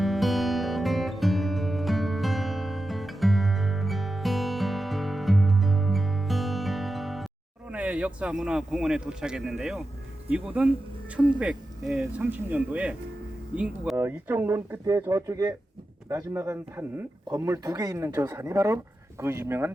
역사문화공원에 도착했는데요. 이곳은 1930년도에 인구가 이쪽 논 끝에 저쪽에 나지막한 산 건물 2개 있는 저 산이 바로 그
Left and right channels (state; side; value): normal; both; correlation 0.91